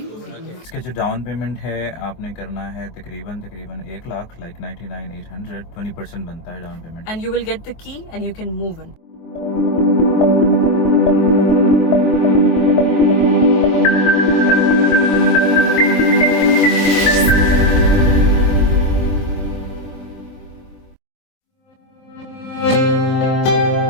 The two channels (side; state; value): right; late; 24 ms